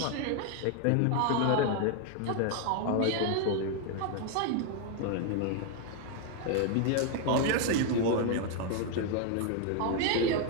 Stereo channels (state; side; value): different; both; correlation 0.01